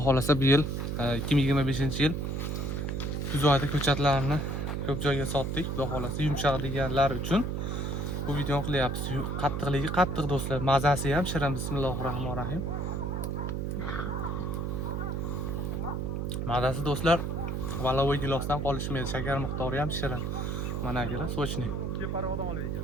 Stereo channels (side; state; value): right; noise; hum, 1 dB below the sound